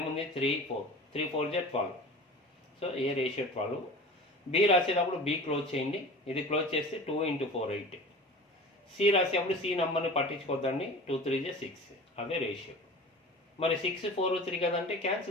ఏముంది 3 4 3 4 12. సో ఏ రేషియో 12. బి రాసేటప్పుడు బి క్లోజ్ చేయండి. ఇది క్లోజ్ చేస్తే 2 × 4 8. సి రాసేటప్పుడు సి నెంబర్ని పట్టించుకోద్దండి. 2 3 6. అదే రేషియో. మరి 6 4 3 కదంటే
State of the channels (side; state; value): both; normal; correlation 0.37